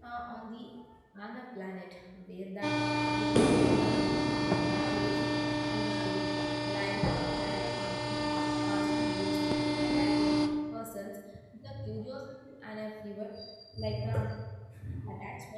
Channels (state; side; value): identical; both; correlation 1.00